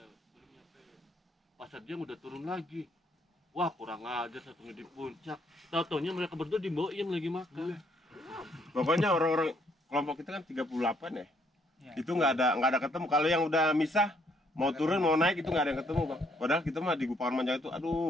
Belum nyampe. Pasar dia udah turun lagi. Wah kurang ajar satunya di puncak. Tahu-taunya mereka berdua di Boim lagi makan. Pokoknya orang-orang kelompok kita kan 38 ya. Iya. Itu nggak ada ketemu. Kalau yang udah misah, mau turun mau naik itu nggak ada yang ketemu bang. Padahal kita mah di Gupakan Manjang itu,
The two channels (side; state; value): both; normal; correlation 0.68